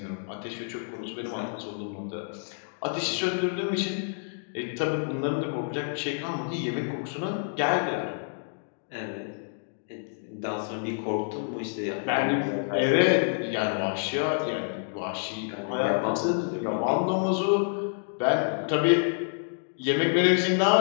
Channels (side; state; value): right; silent; digital silence